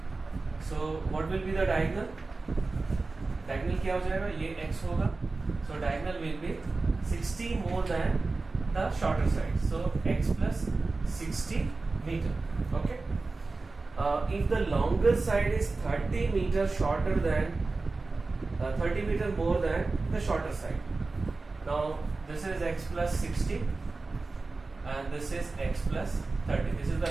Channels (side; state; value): left; quieter; 3.6 dB